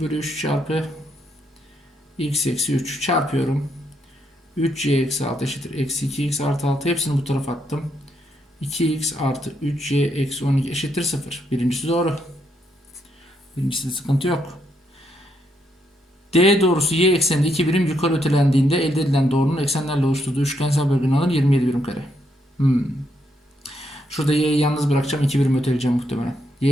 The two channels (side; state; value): both; normal; correlation 0.77